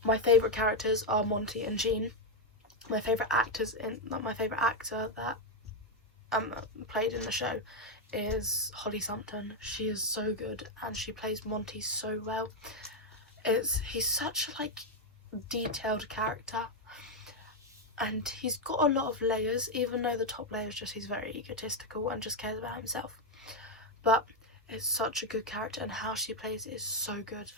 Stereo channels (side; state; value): both; normal; correlation 0.04